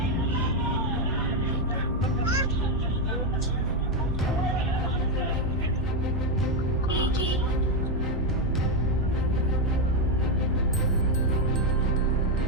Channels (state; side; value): normal; both; correlation 0.05